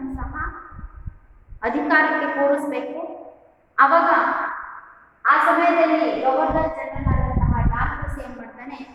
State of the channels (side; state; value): both; identical; correlation 1.00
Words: ಸಹ ಅಧಿಕಾರಕ್ಕೆ ಕೂರಿಸಬೇಕು. ಅವಾಗ ಆ ಸಮಯದಲ್ಲಿ ಗವರ್ನರ್ ಜನರಲ್ ಆದಂತಹ ಡಾಲ್ಹೌಸಿ ಏನ್ ಮಾಡ್ತಾನೆ,